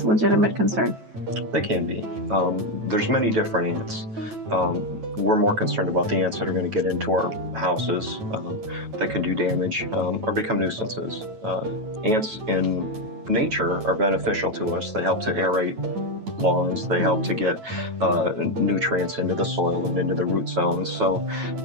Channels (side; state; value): left; late; 9.1 ms